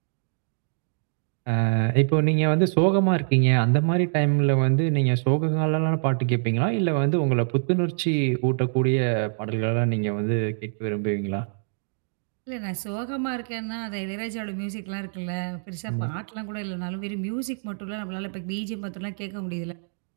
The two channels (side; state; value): left; silent; digital silence